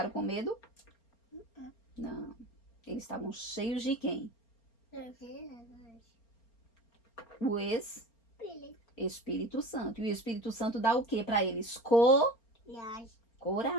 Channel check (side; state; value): right; late; 4.3 ms